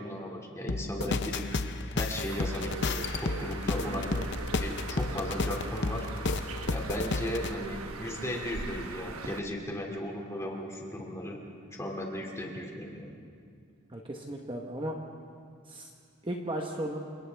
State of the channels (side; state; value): both; normal; correlation 0.56